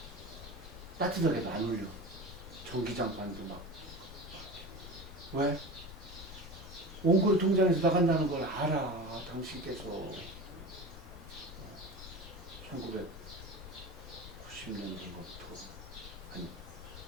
따뜻하게도 안 올려. 전기장판도 막. 왜? 원고리 통장에서 나간다는 걸 알아. 당신께서 1990년도부터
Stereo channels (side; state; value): left; noise; rumble, 14 dB below the sound